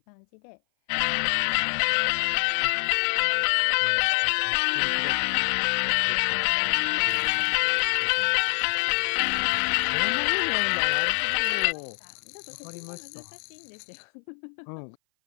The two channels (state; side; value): silent; right; 57 dB below the other